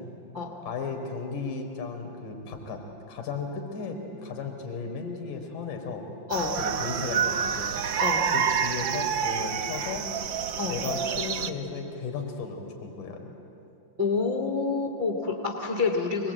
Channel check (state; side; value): late; left; 5.8 ms